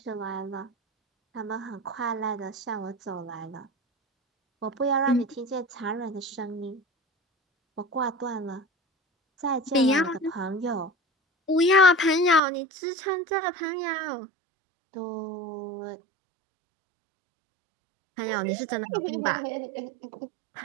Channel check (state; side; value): drops out; left; at 12.4 s